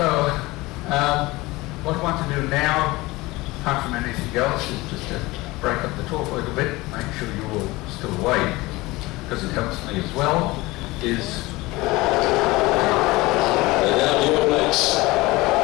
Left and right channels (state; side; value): quieter; right; 21.0 dB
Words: what I want to do now, apart from anything else, is just to break up the talk a little bit, make sure you're all still awake, because it helps me as well, is... And now the All Blacks,